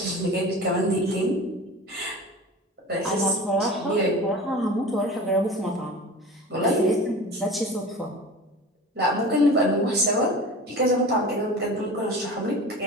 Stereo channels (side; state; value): both; normal; correlation 0.35